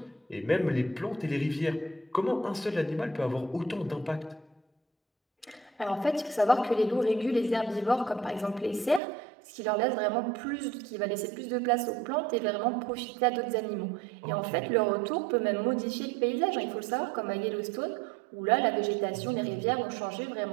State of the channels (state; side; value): drops out; left; at 9.0 s